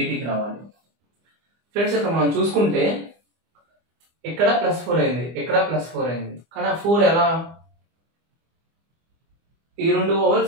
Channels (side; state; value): left; late; 25 ms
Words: రావాలి ఫ్రెండ్స్ ఇక్కడ మనం చూసుకుంటే ఇక్కడ +4 అయింది, ఇక్కడ +4 అయింది. కానీ ఆ 4 ఎలా, ఈ 2